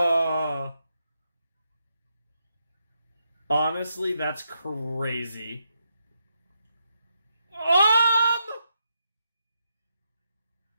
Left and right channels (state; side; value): inverted; both; correlation -0.83